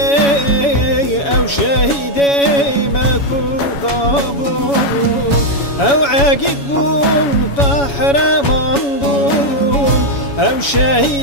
شهیده مکودا بون او عقید بون قهرمان بون او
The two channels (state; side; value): late; right; 7.1 ms